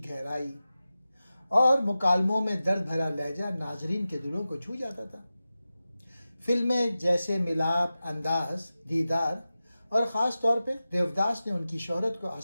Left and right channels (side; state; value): both; inverted; correlation -0.94